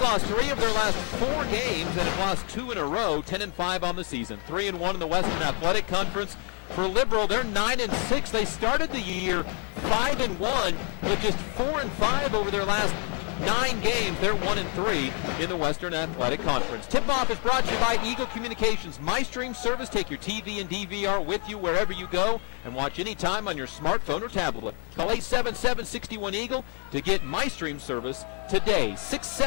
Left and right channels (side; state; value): right; quieter; 39.4 dB